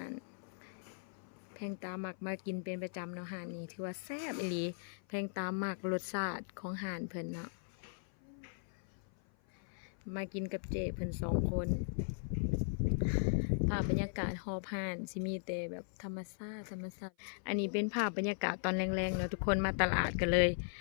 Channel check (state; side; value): silent; right; 52 dB below the other